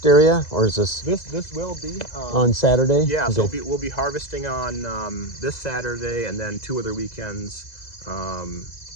area, or is this this will be on Saturday? Yeah, Okay. so we'll be harvesting on this Saturday and then 2 other weekends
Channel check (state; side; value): late; right; 2.0 ms